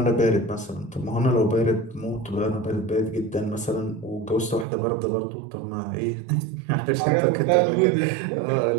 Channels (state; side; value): drops out; left; at 4.7 s